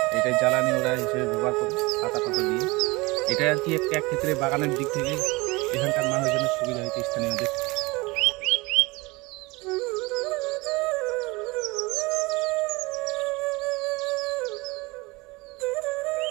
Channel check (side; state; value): left; quieter; 24.2 dB